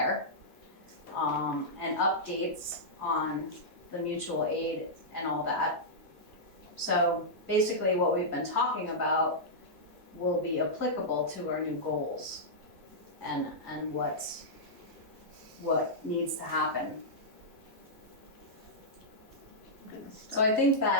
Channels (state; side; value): normal; both; correlation -0.11